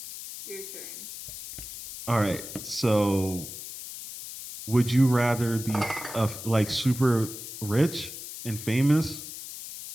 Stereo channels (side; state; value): left; noise; hiss, 11 dB below the sound